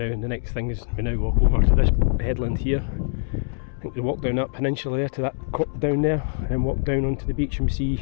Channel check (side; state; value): right; silent; digital silence